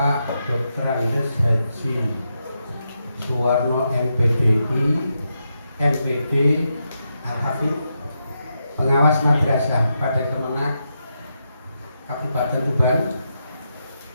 Dr. Andes Haji Suwarno MPDI MPD Al-Hafidh, pengawas madrasah pada Kemenak Kabupaten Tuban,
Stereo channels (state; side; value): inverted; both; correlation -0.84